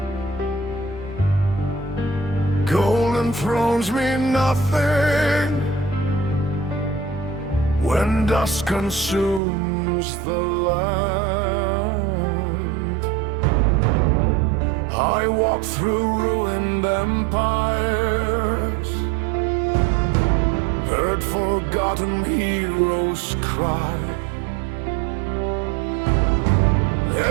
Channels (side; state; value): left; drops out; at 9.4 s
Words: Golden thrones mean nothing when dust consumes the land. I walk through ruined empires, heard forgotten heroes cry.